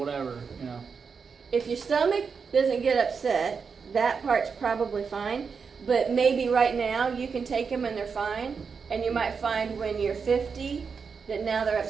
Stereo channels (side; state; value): left; quieter; 5.6 dB